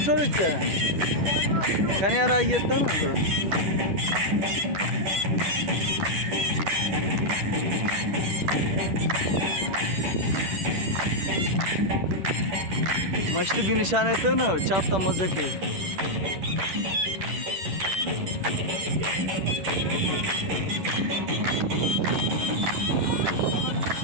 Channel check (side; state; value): left; late; 10 ms